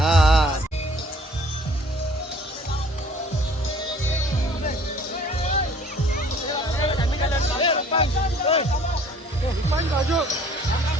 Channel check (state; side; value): normal; both; correlation 0.54